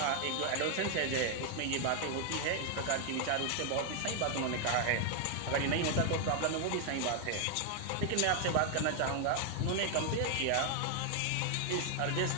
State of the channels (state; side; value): different; both; correlation 0.00